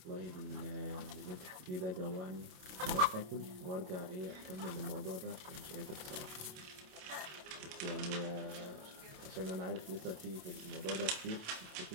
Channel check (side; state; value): left; late; 27 ms